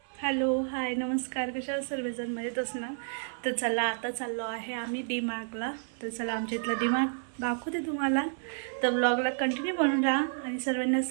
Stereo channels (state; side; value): silent; left; 57 dB below the other